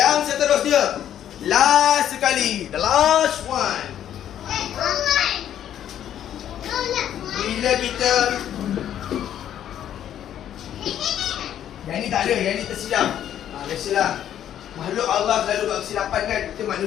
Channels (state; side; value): quieter; right; 10.6 dB